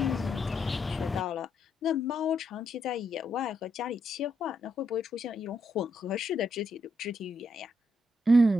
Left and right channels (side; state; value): both; normal; correlation 0.78